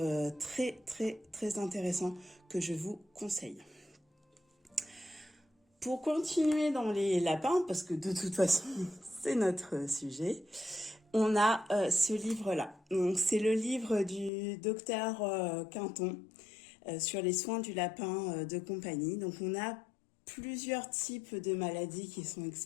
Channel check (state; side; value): drops out; right; at 14.3 s